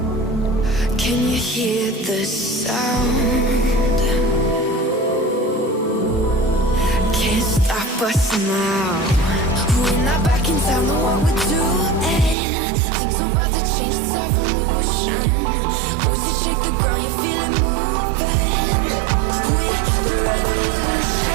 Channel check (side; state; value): left; drops out; at 12.4 s